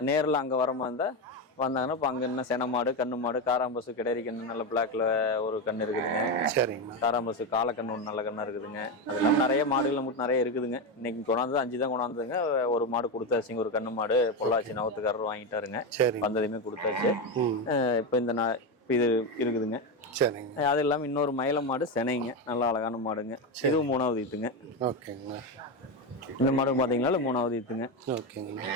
நேரில் அங்கே வர மாதிரி இருந்தால் வந்தாங்கன்னா இப்போ அங்கே என்ன சென மாடு, கண்ணு மாடு, காராம்பசு, கிடாரி கண்ணு நல்ல பிளாக்ல ஒரு கண்ணு இருக்குதுங்க. சரிங்கண்ணா. காராம்பசு காலக்கண்ணு ஒன்று நல்ல கண்ணா இருக்குதுங்க. அது இல்லாமல் நிறைய மாடுகள் மட்டும் நிறைய இருக்குதுங்க. இன்னைக்கு கொண்டாந்து 5 தான் கொண்டாந்துங்க. ஒரு மாடு கொடுத்தாச்சுங்க, ஒரு கண்ணு மாடு பொள்ளாச்சி நவத்துக்காரர் வாங்கிட்டாருங்க. வந்ததையுமே கொடுத்தாச்சு. இப்போ இது இருக்குதுங்க. சரிங்க. அது இல்லாமல் இன்னொரு மயில மாடு செனைங்க, நல்ல அழகான மாடுங்க. இதுவும் 3வது ஈத்துங்க. ஓகேங்கண்ணா. இந்த மாடு பார்த்தீங்களா 3வது ஈத்துங்க. ஓகேங்கண்ணா.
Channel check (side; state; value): both; normal; correlation 0.13